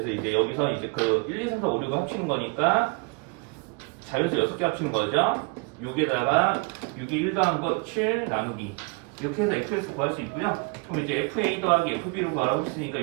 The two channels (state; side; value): quieter; left; 31.8 dB